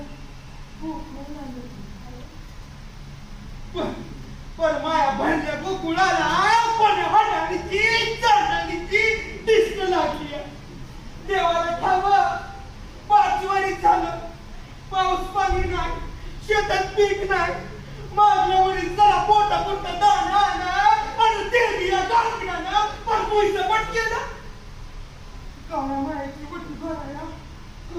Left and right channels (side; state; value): both; identical; correlation 1.00